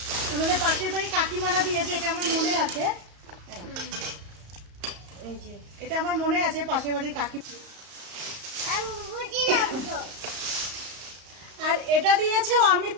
আমাদের পাশের বাড়ি কাকিমারা দিয়েছে। এটা আমার মনে আছে, এটা আমার মনে আছে, পাশের বাড়ির কাকি। আর এটা দিয়েছে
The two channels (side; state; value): left; late; 34 ms